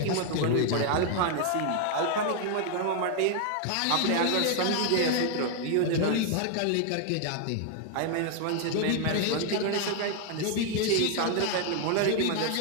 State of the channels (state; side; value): different; both; correlation 0.00